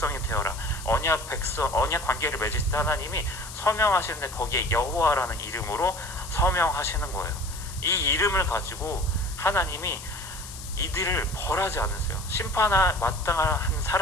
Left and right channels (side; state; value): left; noise; hiss, 13 dB below the sound